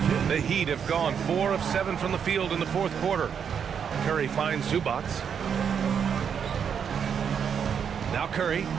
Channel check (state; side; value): quieter; left; 7.4 dB